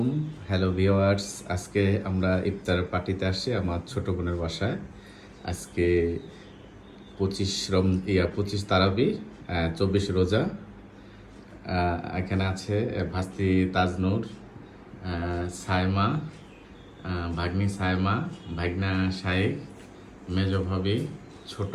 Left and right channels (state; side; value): identical; both; correlation 1.00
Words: Hello viewers, আজকে আমরা ইফতার পার্টিতে আসছি আমার ছোট বোনের বাসায়। আজকে 25 তারাবি, 24 রোজা। এখানে আছে ভাস্তি তাজনূর, সায়মা, ভাগ্নি সায়মা, ভাগনা শাইখ, মেজ ভাবি, ছোট